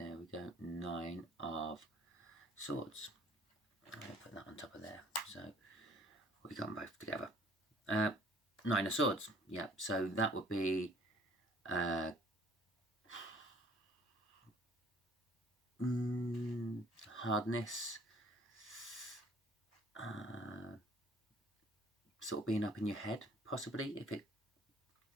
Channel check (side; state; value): both; normal; correlation 0.56